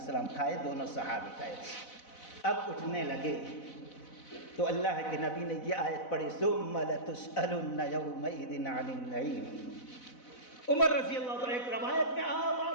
کھائے، دونوں صحابی کھائے۔ اب اٹھنے لگے تو اللہ کے نبی نے یہ آیت پڑھی ثم لتسألن یومئذ عن النعیم۔ عمر رضی اللہ عنہ ایک روایت میں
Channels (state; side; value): late; right; 4.0 ms